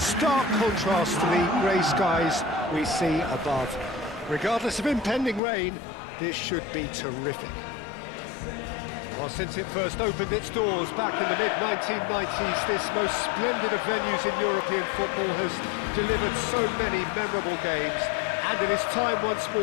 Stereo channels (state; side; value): drops out; right; at 5.4 s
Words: contrast to the grey skies we see above. Regardless of impending rain, this should be terrific. Well, since it first opened its doors back in the mid-1990s, this most splendid of venues in European football has delivered so many memorable games, and it is time once